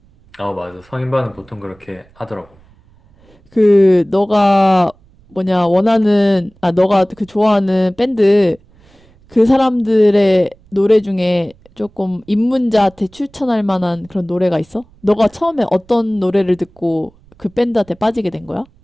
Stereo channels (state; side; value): noise; right; rumble, 29 dB below the sound